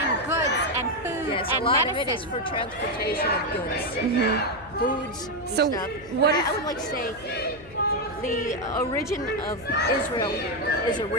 goods and food and a lot medicine. of it is for transportation of goods, foods, and so stuff. what I would like to say the origin of Israel is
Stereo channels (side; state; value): left; noise; hum, 20 dB below the sound